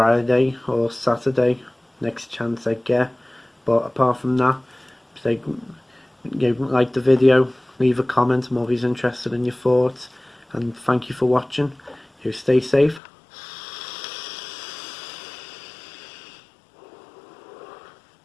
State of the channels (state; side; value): drops out; right; at 13.0 s